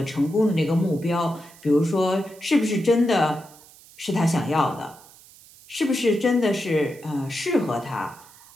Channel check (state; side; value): noise; right; hiss, 23 dB below the sound